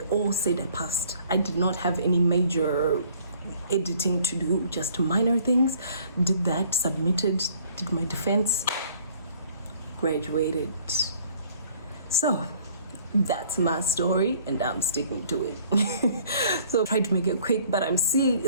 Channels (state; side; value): inverted; both; correlation -0.57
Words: all said I passed. I did not have any major editing to do, just minor things. Did that, submitted, did my defense, graduated. So that's my story and I'm sticking to it. So I tried to make it quick, but I'm seeing